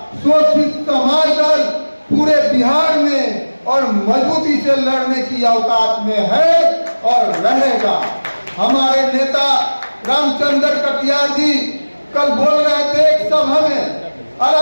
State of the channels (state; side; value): inverted; both; correlation -1.00